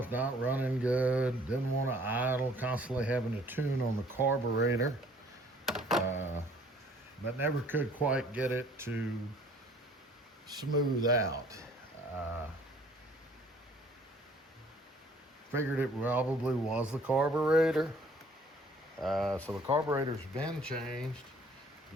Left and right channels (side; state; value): both; normal; correlation 0.56